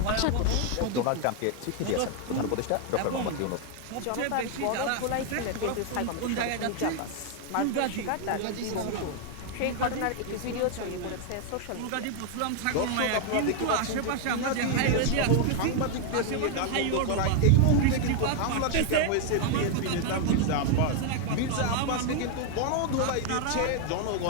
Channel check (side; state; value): both; different; correlation 0.01